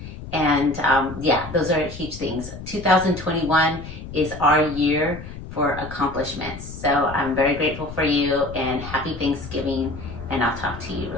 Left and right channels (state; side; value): noise; left; rumble, 12 dB below the sound